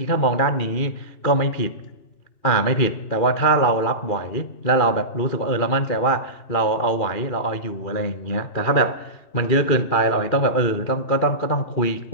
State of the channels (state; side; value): late; right; 2.4 ms